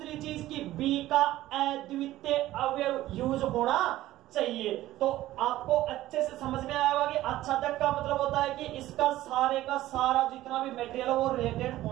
चीज की B का अद्वितीय अवयव यूज होना चाहिए। तो आपको अच्छे से समझ में आया होगा कि आच्छादक का मतलब होता है कि इसका सारे का सारा जितना भी मटेरियल है वो रिलेटेड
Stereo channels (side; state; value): left; quieter; 15.2 dB